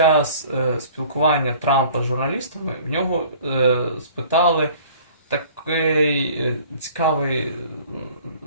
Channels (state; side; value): inverted; both; correlation -0.50